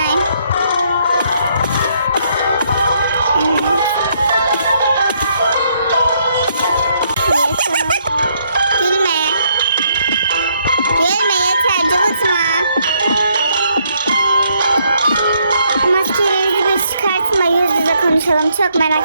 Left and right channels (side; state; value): both; inverted; correlation -0.71